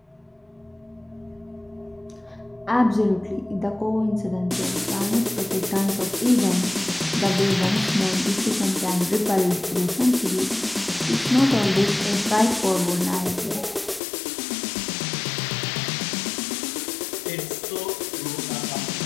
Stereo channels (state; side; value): drops out; right; at 14.0 s